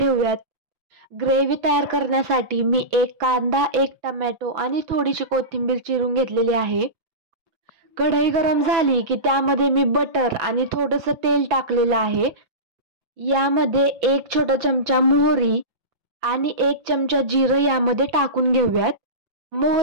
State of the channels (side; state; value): left; late; 6.0 ms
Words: ग्रेव्ही तयार करण्यासाठी मी 1 कांदा, 1 टोमॅटो आणि थोडीशी कोथिंबीर चिरून घेतलेली आहे. कढई गरम झाली की त्यामध्ये मी बटर आणि थोडंसं तेल टाकलेलं आहे. यामध्ये 1 छोटा चमचा मोहरी आणि 1 चमचा जिरं यामध्ये टाकून घेऊयात.